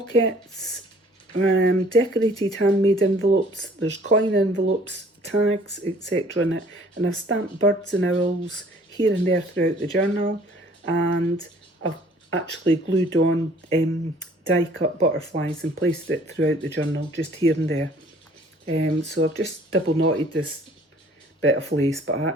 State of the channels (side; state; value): both; normal; correlation 0.55